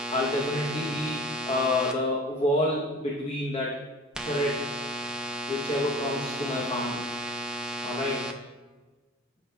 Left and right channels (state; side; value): normal; both; correlation 0.41